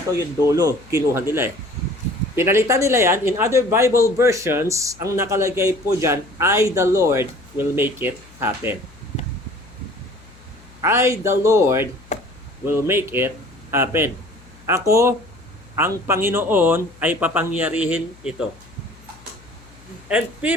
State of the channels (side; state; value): left; noise; hum, 25 dB below the sound